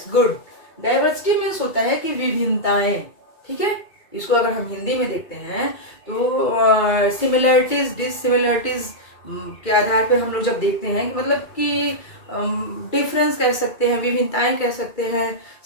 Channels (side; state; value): right; late; 2.2 ms